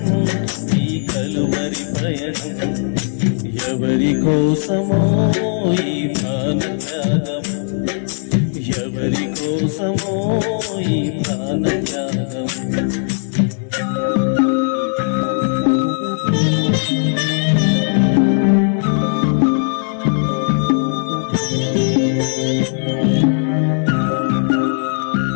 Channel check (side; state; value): right; silent; digital silence